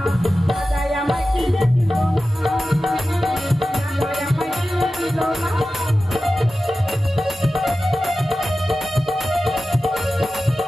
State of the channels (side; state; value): both; normal; correlation 0.94